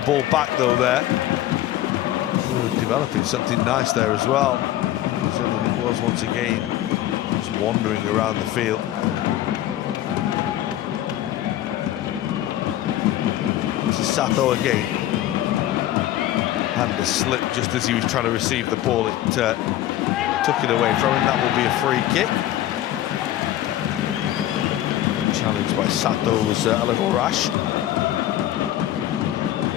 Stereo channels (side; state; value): right; quieter; 13.4 dB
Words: back though there. Ooh, developing something nice there as well. Certainly it was once again just wandering around the field. This is Sato again. And the slip just as he was trying to receive the ball, it took it away from him. That will be a free kick. The challenge by Sato was a little rash.